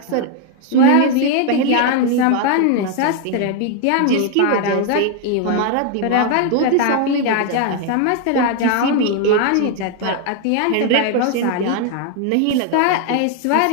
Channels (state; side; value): different; both; correlation 0.00